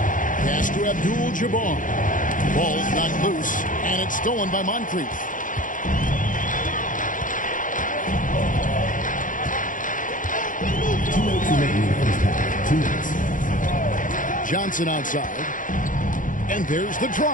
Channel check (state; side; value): late; right; 0.38 ms